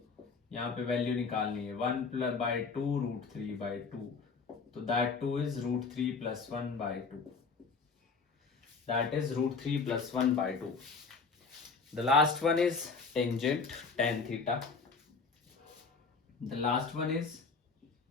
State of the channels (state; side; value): quieter; right; 4.7 dB